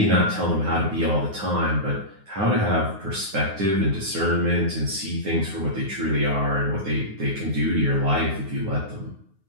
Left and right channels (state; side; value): late; left; 9.5 ms